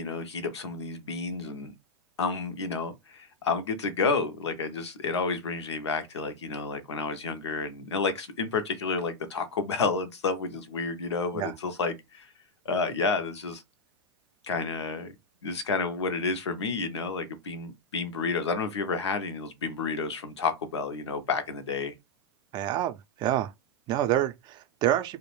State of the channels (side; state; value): both; normal; correlation -0.02